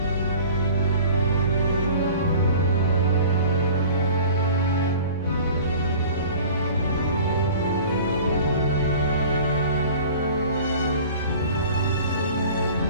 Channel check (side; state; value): both; inverted; correlation -0.43